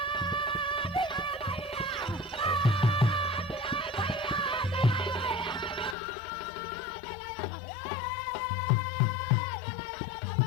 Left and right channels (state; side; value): drops out; right; at 6.0 s